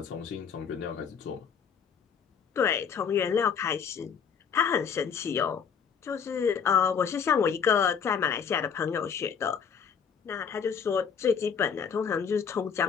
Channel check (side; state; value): right; quieter; 6.9 dB